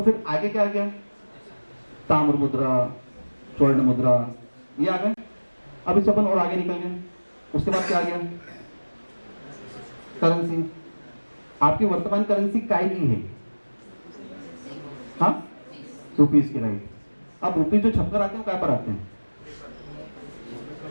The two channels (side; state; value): both; inverted; correlation -1.00